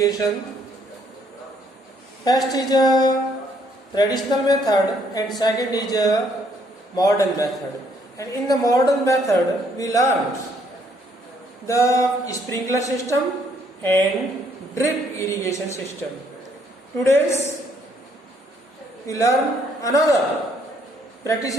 First is a traditional method and second is a modern method. And in the modern method we learned the sprinkler system and drip irrigation system. Today's we learn another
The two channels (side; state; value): both; normal; correlation 0.68